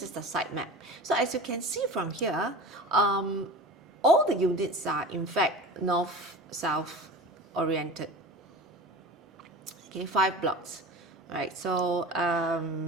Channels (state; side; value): normal; both; correlation 0.35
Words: is the site map. So as you can see from here, all the units are in fact north-south oriented. Okay, 5 blocks. Right, so